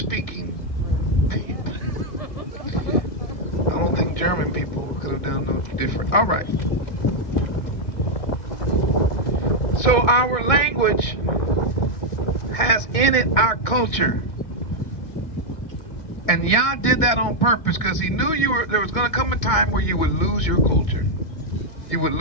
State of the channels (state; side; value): late; right; 2.2 ms